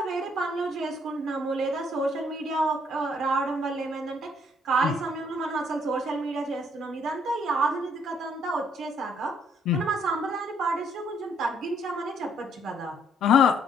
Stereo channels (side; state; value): both; normal; correlation 0.67